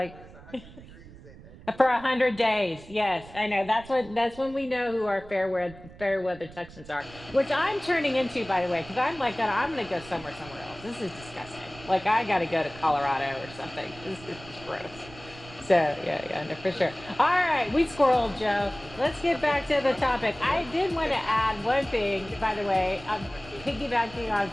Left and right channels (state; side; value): noise; right; rumble, 19 dB below the sound